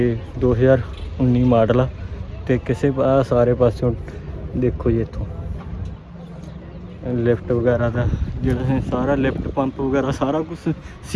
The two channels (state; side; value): identical; both; correlation 1.00